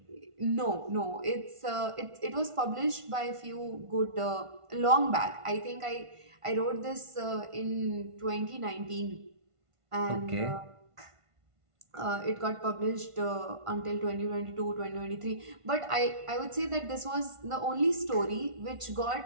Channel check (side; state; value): left; late; 1.5 ms